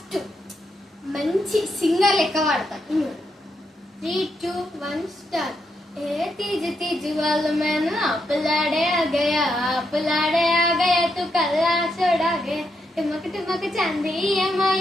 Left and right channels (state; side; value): normal; both; correlation 0.81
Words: మంచి సింగర్ లెక్క పాడతా. 3, 2, 1 స్టార్ట్. ए तीज तीज वाल मैंने अपलाड़े आ गया तू कल्ला छोड़ा गया टुमक टुमक चांदी